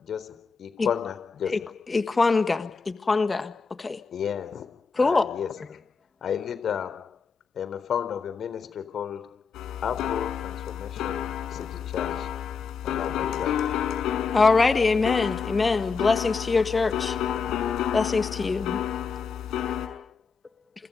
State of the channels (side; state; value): right; quieter; 5.0 dB